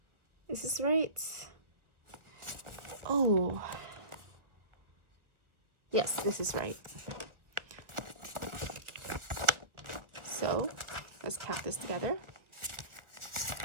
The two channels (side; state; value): left; late; 1.5 ms